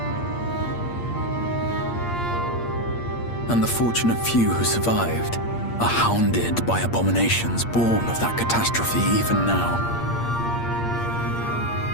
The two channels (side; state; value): right; late; 8.6 ms